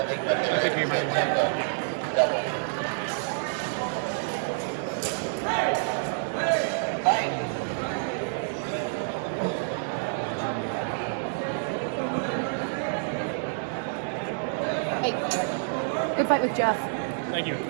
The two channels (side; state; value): left; silent; digital silence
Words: thing, but they're double. Hey, good fight with Jeff. Thank you.